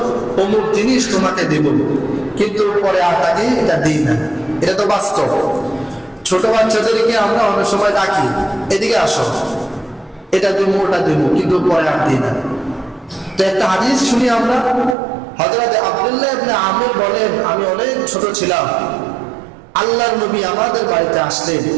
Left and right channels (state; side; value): drops out; left; at 15.0 s